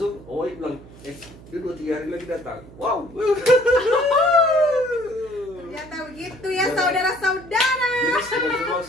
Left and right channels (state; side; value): noise; right; hum, 20 dB below the sound